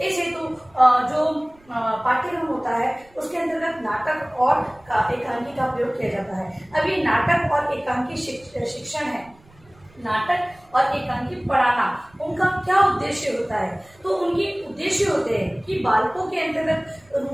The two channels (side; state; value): right; noise; rumble, 29 dB below the sound